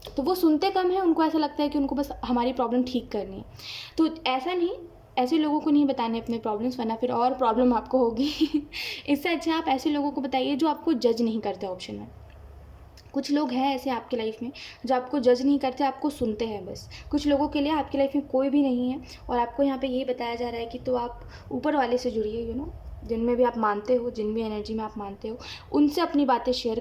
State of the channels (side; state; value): both; identical; correlation 1.00